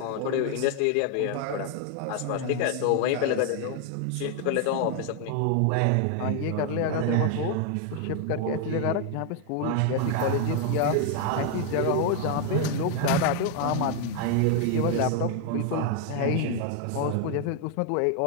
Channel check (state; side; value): different; both; correlation 0.00